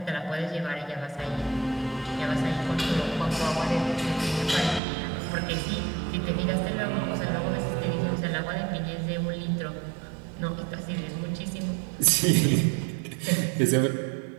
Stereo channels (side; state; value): left; drops out; at 4.8 s